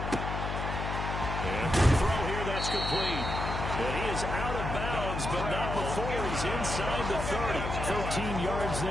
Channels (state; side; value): noise; left; hum, 3 dB below the sound